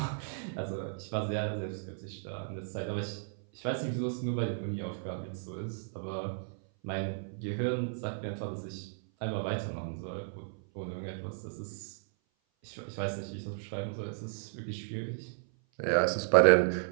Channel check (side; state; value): left; silent; 55 dB below the other